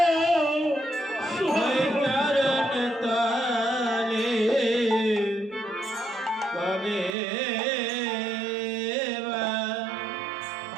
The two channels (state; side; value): drops out; left; at 7.2 s